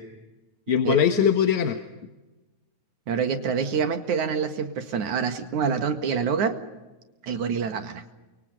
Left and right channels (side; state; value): left; late; 9.5 ms